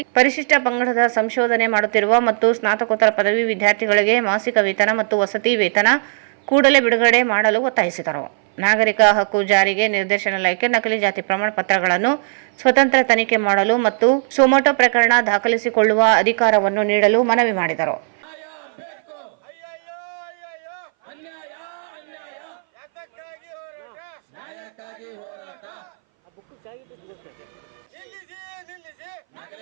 ಪರಿಶಿಷ್ಟ ಪಂಗಡದ ಸಂಶೋಧನೆ ಮಾಡುತ್ತಿರುವ ಮತ್ತು ಸ್ನಾತಕೋತ್ತರ ಪದವಿ ವಿದ್ಯಾರ್ಥಿಗಳಿಗೆ ಮಾಸಿಕ ವೇತನ ಮತ್ತು ವಸತಿ ವೇತನ ಕೂಡಲೇ ಬಿಡುಗಡೆ ಮಾಡಲು ಒತ್ತಾಯಿಸಿದರು. ನಾಗರಿಕ ಹಕ್ಕು ಜಾರಿಗೆ ನಿರ್ದೇಶನಾಲಯಕ್ಕೆ ನಕಲಿ ಜಾತಿ ಪ್ರಮಾಣ ಪತ್ರಗಳನ್ನು ಸ್ವತಂತ್ರ ತನಿಖೆ ಮಾಡಲು ಮತ್ತು ಸೊಮೋಟೊ ಪ್ರಕರಣ ದಾಖಲಿಸಿಕೊಳ್ಳುವ ಅಧಿಕಾರವನ್ನು ನೀಡಲು ಮನವಿ ಮಾಡಿದರು.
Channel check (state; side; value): silent; left; 61 dB below the other